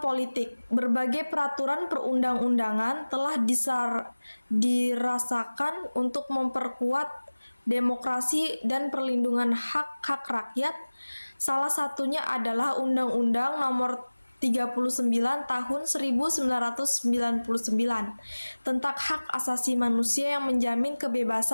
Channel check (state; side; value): inverted; both; correlation -1.00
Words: Berbagai peraturan perundang-undangan telah dirasakan untuk memperkuat demokrasi dan perlindungan hak-hak rakyat. Salah satunya adalah Undang-Undang Nomor 39 Tahun 1999 tentang hak asasi manusia yang menjamin